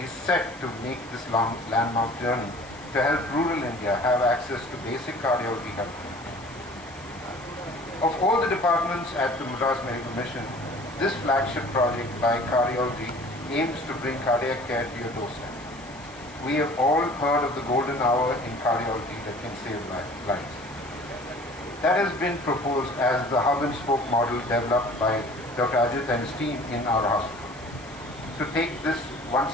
is set to make this landmark journey to help rural India have access to basic cardiology help. Of all the departments at the Madras Medical Mission, this flagship project by cardiology aims to bring cardiac care to your doorstep. We have all heard of the golden hour in cardiology that can save lives. That has been proposed as the hub and spoke model developed by Dr. Ajit and his team in our hospital. To take this one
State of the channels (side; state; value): left; noise; hiss, 24 dB below the sound